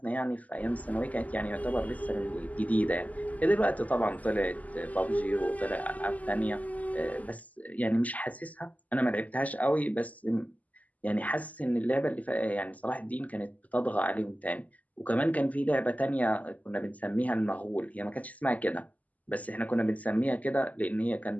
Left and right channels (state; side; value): late; right; 0.075 ms